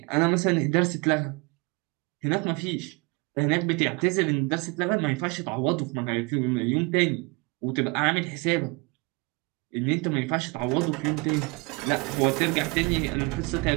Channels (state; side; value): quieter; left; 28.0 dB